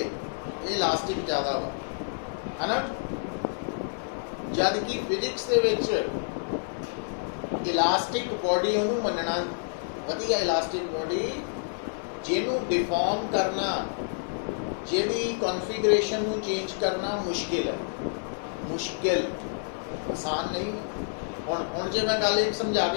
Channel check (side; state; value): right; silent; digital silence